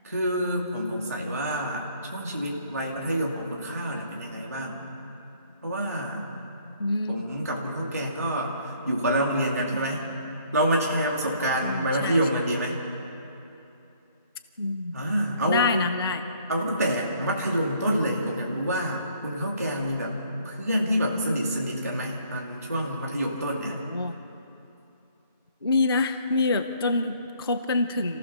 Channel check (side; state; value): both; inverted; correlation -0.62